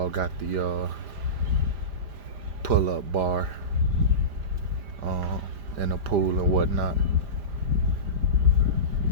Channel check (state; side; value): late; left; 5.0 ms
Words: got the pull-up bar and a pool and whatnot.